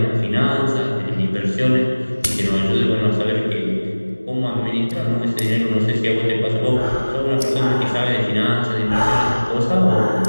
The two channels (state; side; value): inverted; both; correlation -1.00